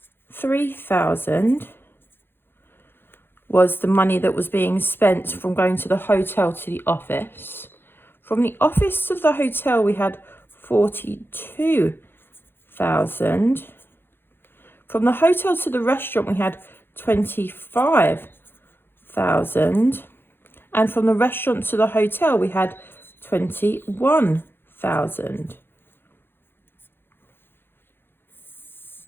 was the money that was being spent from going to the hotel to the office. From the office to the hotel, we had 42,000. From the hotel to the restaurant, we had 25,000. And from the restaurant to the hotel, we had 21,000.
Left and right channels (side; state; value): right; late; 0.10 ms